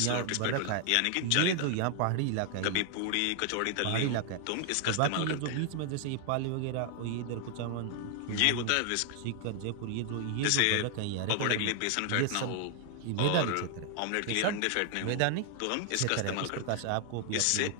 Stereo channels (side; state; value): both; different; correlation 0.00